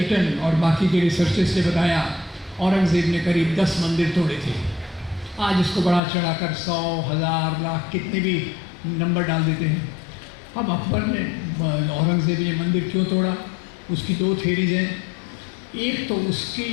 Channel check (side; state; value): right; drops out; at 6.0 s